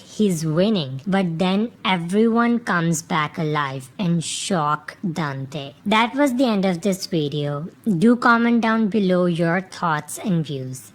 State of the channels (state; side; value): identical; both; correlation 1.00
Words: winning, but then everyone comes back alive and shock Dante. That was the end of this video. Do comment down below your thoughts and views.